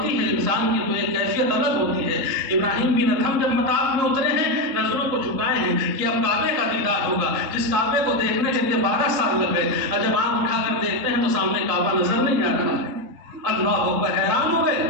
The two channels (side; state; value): left; late; 3.7 ms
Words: ہے انسان کی تو ایک کیفیت الگ ہوتی ہے۔ ابراہیم بن ادھم جب مطاف میں اترے ہیں، نظروں کو جھکائے ہیں کہ اب کعبے کا دیدار ہوگا، جس کعبے کو دیکھنے کے لیے 12 سال لگ گئے، اور جب آنکھ اٹھا کر دیکھتے ہیں تو سامنے کعبہ نظر نہیں آ رہا ہے۔ اللہ اکبر، حیران ہو